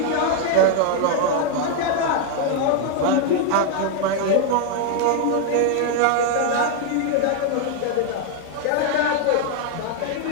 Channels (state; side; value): different; both; correlation 0.00